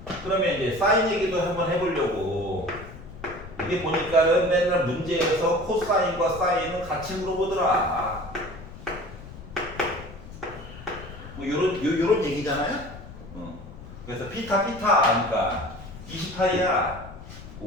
그러면 이제 사인 얘기도 한번 해보려고. 이게 보니까는 맨날 문제에서 코사인과 사인은 같이 물어보더라. 뭐 요런 얘기잖아요. 그래서 피타 아니까 28이야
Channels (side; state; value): left; noise; rumble, 15 dB below the sound